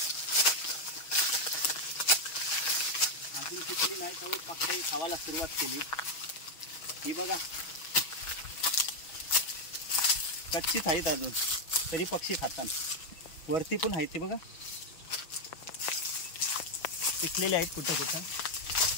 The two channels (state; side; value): late; right; 6.2 ms